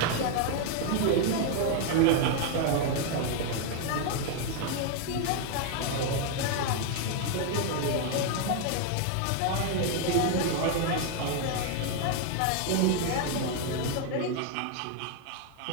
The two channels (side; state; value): both; different; correlation 0.00